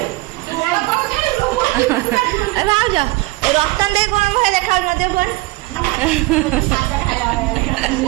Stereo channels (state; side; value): quieter; left; 21.3 dB